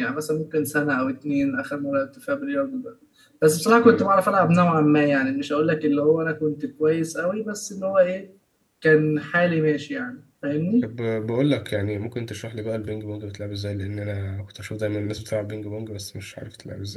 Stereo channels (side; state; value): both; identical; correlation 1.00